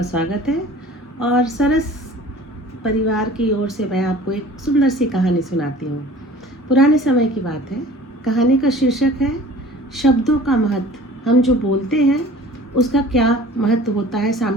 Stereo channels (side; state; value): both; normal; correlation 0.45